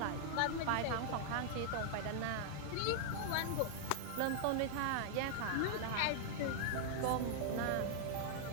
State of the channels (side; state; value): both; different; correlation -0.01